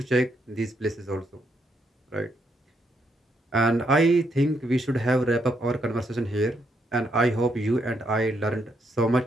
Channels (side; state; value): both; normal; correlation 0.76